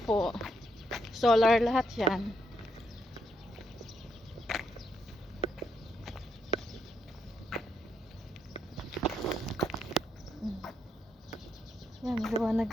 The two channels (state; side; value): normal; both; correlation 0.77